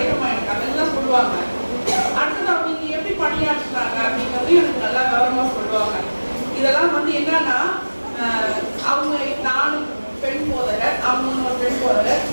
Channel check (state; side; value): inverted; both; correlation -1.00